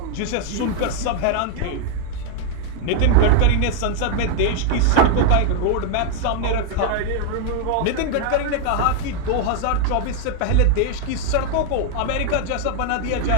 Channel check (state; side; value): different; both; correlation 0.00